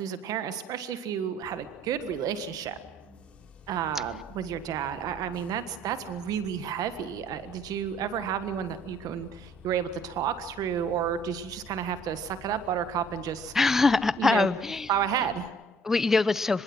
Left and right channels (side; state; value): both; normal; correlation 0.58